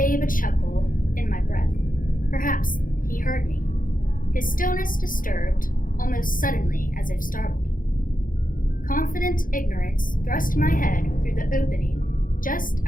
a chuckle in my breath. Perhaps he heard me. His stillness disturbed, almost suddenly as if startled. Confident ignorance thrust my head through the opening, just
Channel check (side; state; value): right; late; 0.40 ms